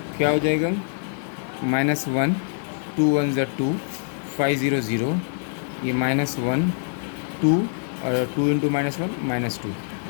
क्या हो जाएगा, माइनस 1 2 1 ज़ा 2 5 0 0. ये माइनस 1 2 और 2 इंटू माइनस 1 माइनस 2.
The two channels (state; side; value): silent; right; 62 dB below the other